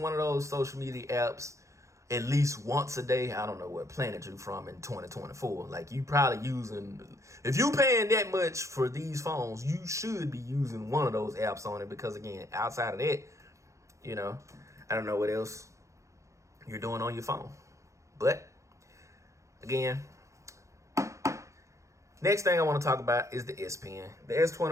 one of those social media apps at least once a day, I don't know what planet you're from in 2024. Like, you probably using, if you paying that much for these phones, you should be using one of those apps on it, because again, outside of that, you know, I don't know what else you're doing on your phone. But again, next thing I want to talk about is the S Pen. The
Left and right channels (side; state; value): left; late; 0.15 ms